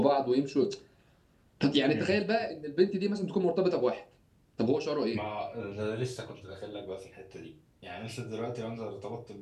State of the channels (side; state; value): both; identical; correlation 1.00